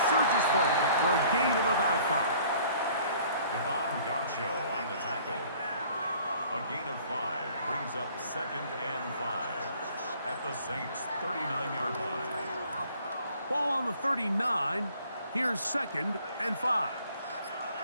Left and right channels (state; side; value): inverted; both; correlation -0.55